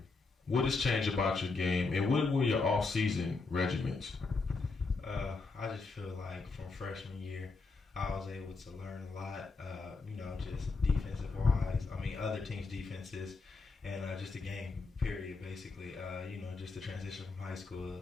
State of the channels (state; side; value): quieter; right; 4.1 dB